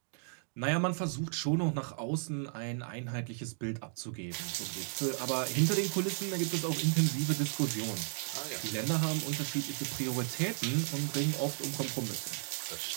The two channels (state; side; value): silent; left; 55 dB below the other